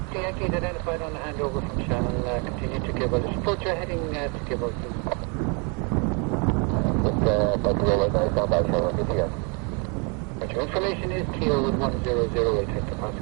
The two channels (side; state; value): left; quieter; 34.8 dB